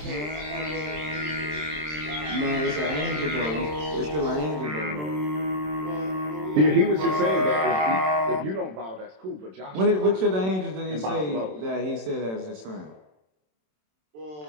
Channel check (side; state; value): left; late; 27 ms